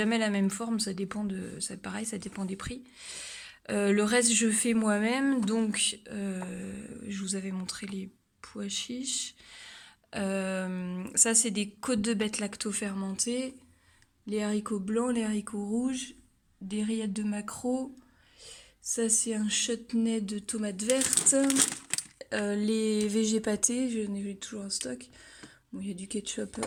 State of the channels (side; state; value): both; identical; correlation 1.00